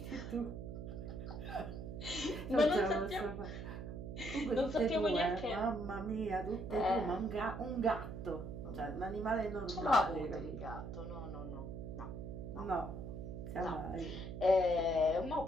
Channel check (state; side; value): noise; right; hum, 8 dB below the sound